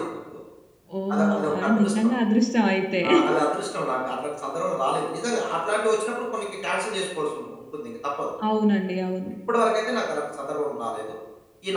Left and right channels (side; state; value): both; identical; correlation 1.00